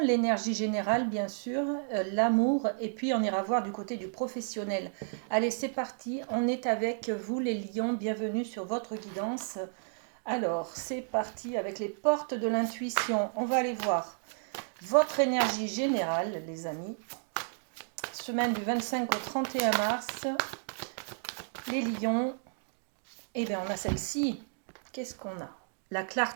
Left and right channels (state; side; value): silent; left; digital silence